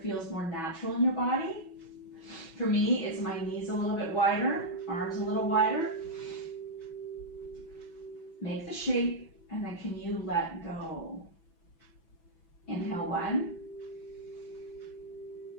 feels more natural in your body. For me, it's my knees a little bit wider, arms a little wider. Make the shape, and then can you let go? Inhale 1.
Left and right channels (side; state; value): right; late; 6.0 ms